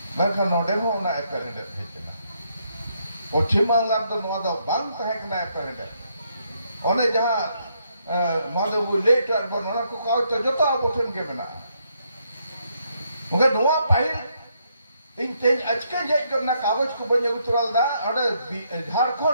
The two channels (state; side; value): inverted; both; correlation -0.75